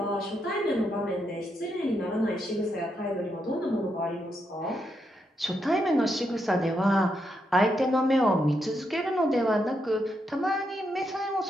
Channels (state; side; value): normal; both; correlation 0.81